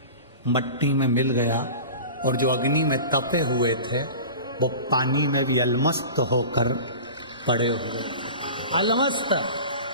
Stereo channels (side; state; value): both; inverted; correlation -0.36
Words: मट्टी में मिल गया, और जो अग्नि में तपे हुए थे वो पानी में भी अलमस्त होकर पड़े हुए। अलमस्त।